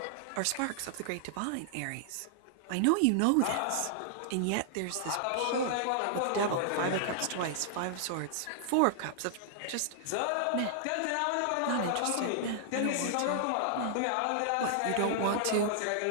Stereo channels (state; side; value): different; both; correlation -0.01